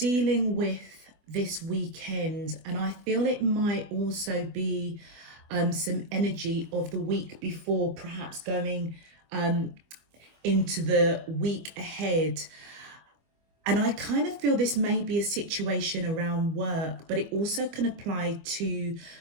with this weekend, and I feel it might also be some energy of the week before, perhaps going into the week ahead. And I kind of feel this may be a situation around work, but it also can apply to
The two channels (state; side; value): late; left; 24 ms